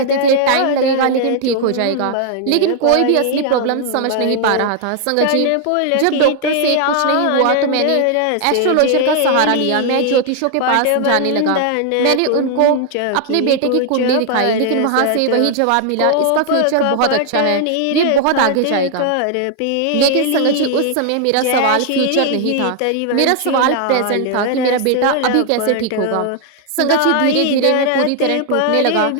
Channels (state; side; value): different; both; correlation 0.00